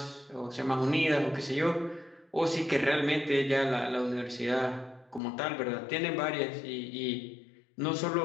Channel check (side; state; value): right; drops out; at 5.2 s